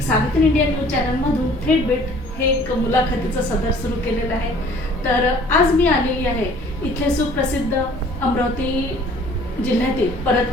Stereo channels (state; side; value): normal; both; correlation 0.53